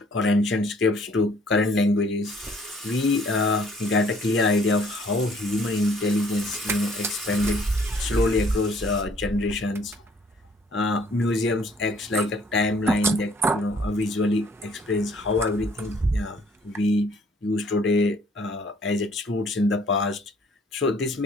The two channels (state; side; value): normal; both; correlation 0.60